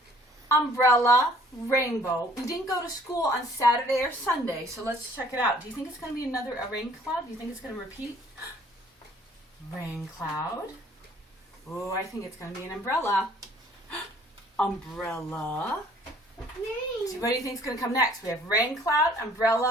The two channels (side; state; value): both; normal; correlation 0.57